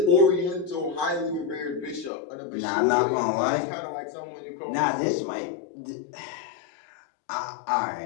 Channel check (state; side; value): drops out; right; at 2.1 s